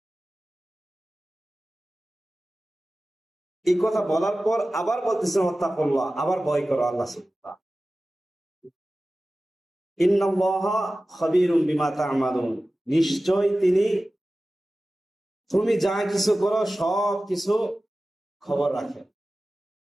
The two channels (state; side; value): normal; both; correlation 0.96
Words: এই কথা বলার পর আবার বলতেছেন ওয়াত্তাকুল্লাহ, আবার ভয় করো আল্লাহ সুবহানাহু। ইন্নাল্লাহা খাবীরুম বিমা তা'মালুন, নিশ্চয় তিনি তুমি যা কিছু করো সব কিছু খবর রাখেন।